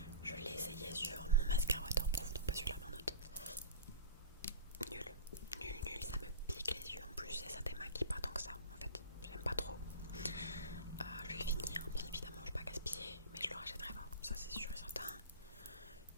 Je l'ai essayé sur mon mascara waterproof, donc pas celui-là mais un autre. Nul, nul, ça me pique les yeux en plus et ça démaquille pas tant que ça en fait. J'aime pas trop. Je vais le finir, bien évidemment, je vais pas gaspiller, mais je le rachèterai pas. Ça c'est sûr et certain.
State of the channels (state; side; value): inverted; both; correlation -0.32